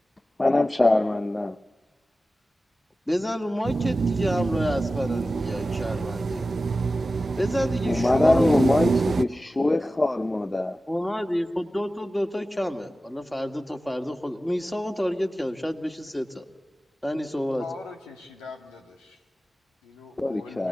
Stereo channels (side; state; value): both; normal; correlation 0.95